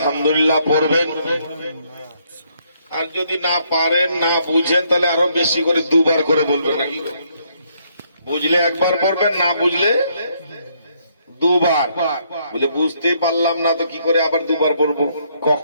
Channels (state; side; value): inverted; both; correlation -0.71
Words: পড়বেন, আর যদি না পারেন, না বুঝেন, তাহলে আরো বেশি করে দুবার করে বলবেন। নাকি বুঝলে একবার পড়বেন, না বুঝলে দুবার। বুঝলে বুঝতেই পারলাম না তো কি করে আবার দুবার পড়বো,